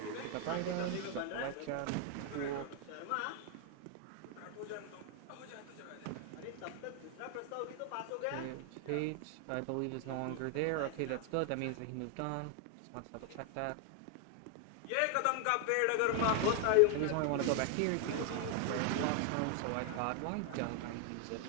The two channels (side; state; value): both; different; correlation 0.00